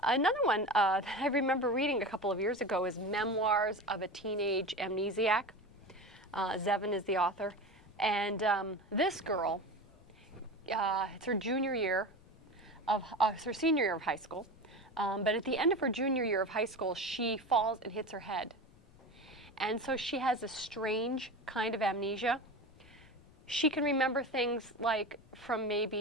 Another one that I remember reading a couple of years ago is Memoirs of a Teenage Amnesiac. Zevin is the author. And this girl, it's her senior year of high school. But at the end of her junior year of high school, she falls and hits her head. And so she has a strange kind of amnesia. She can remember things like from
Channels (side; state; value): left; noise; rumble, 26 dB below the sound